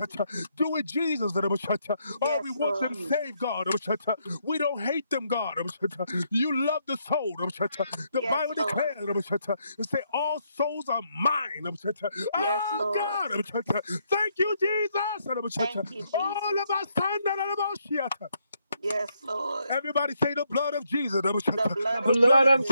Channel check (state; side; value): inverted; both; correlation -0.76